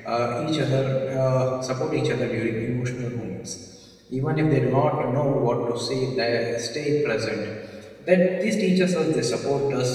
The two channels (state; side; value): identical; both; correlation 1.00